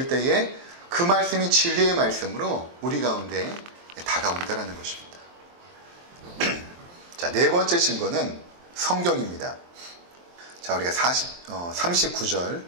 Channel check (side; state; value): left; late; 23 ms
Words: 때에 그 말씀이 진리의 말씀으로 우리 가운데 다가온다는 것입니다. 자, 네 번째 증거는 성경입니다. 자, 우리가